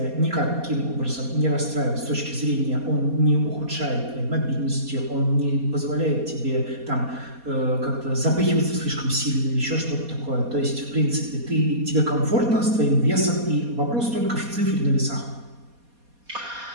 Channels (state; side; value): late; left; 4.2 ms